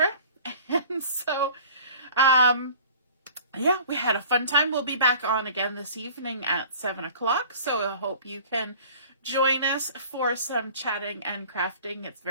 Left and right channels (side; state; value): both; inverted; correlation -0.46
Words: And so, yeah, we had a fun time. We'll be back on again this evening at 7 o'clock. So I hope you can join us for some chatting and crafting. It's